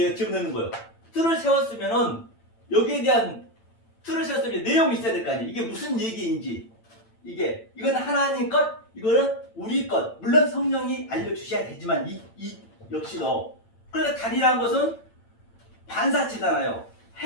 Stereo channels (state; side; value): late; right; 8.9 ms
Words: 집어넣는 거예요. 틀을 세웠으면은 여기에 대한 틀을 세웠으면 내용이 있어야 될 거 아니에요. 이게 무슨 얘기인지 이건 하나님 것, 이거는 우리 것. 물론 성령이 알려주셔야 되지만 이 역시도 그러니까 달이라는 것은 반사체잖아요.